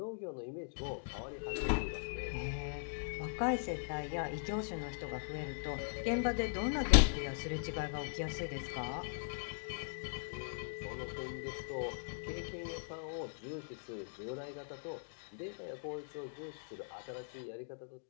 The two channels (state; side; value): silent; right; digital silence